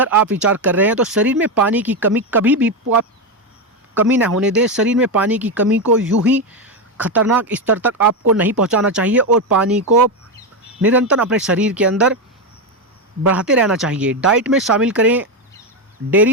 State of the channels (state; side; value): normal; both; correlation 0.10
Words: आप विचार कर रहे हैं तो शरीर में पानी की कमी कभी भी आप कमी ना होने दें। शरीर में पानी की कमी को यूं ही खतरनाक स्तर तक आपको नहीं पहुंचाना चाहिए और पानी को निरंतर अपने शरीर के अंदर बढ़ाते रहना चाहिए। डाइट में शामिल करें